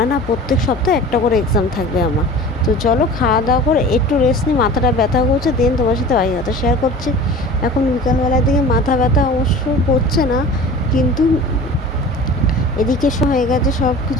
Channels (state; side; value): normal; both; correlation 0.40